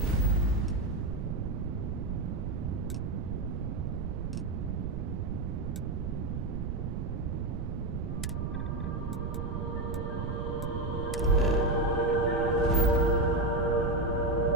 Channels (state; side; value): noise; right; rumble, 3 dB below the sound